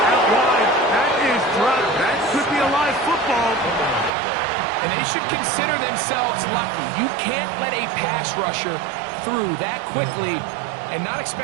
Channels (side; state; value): left; drops out; at 4.1 s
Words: should consider themselves lucky. You can't let a pass rusher through that quickly and not